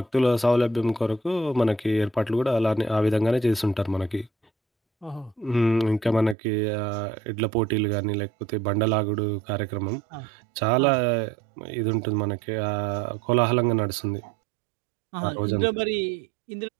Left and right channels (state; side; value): drops out; left; at 6.4 s